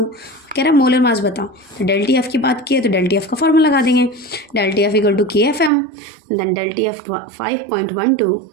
कह रहा है मोलर मास बताओ, तो डेल टी एफ की बात की है तो डेल टी एफ का फॉर्मूला लगा देंगे, del T F equal to K F M, then del T F 5.12,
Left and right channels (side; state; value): left; drops out; at 5.7 s